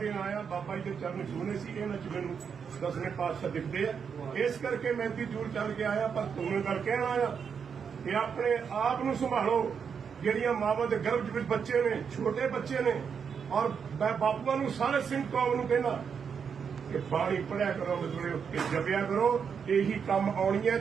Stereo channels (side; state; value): left; quieter; 6.7 dB